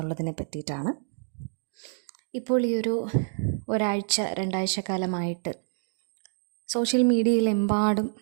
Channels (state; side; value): silent; left; digital silence